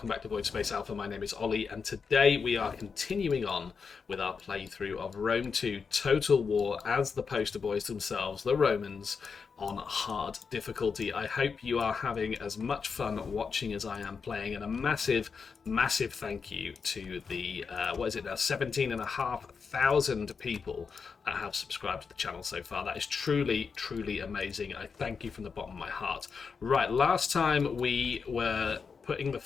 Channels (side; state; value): right; quieter; 5.5 dB